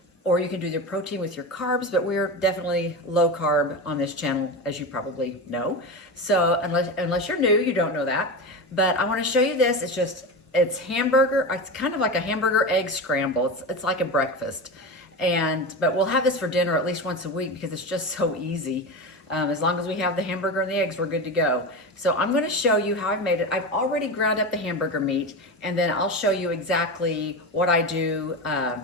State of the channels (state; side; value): normal; both; correlation 0.22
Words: or you can do the protein with your carbs, but we're definitely low carb on this channel, as you probably know. So unless you're new, you don't know that. But I want to show you this. It's hamburger. It's kind of like a hamburger egg scramble. It's like a breakfast. But we'll have this for dinner at least once a week because it's just so easy. As long as we have the hamburger and the eggs, we're good to go. So I'm going to show you how I've made it. I've already ground up the hamburger meat, and then I'll show you exactly what I do